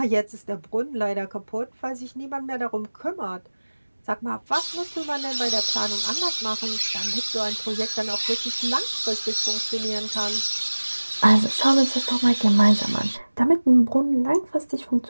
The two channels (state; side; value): inverted; both; correlation -1.00